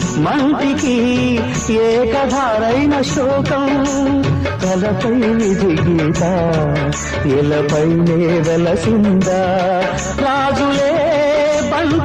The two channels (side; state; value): both; identical; correlation 1.00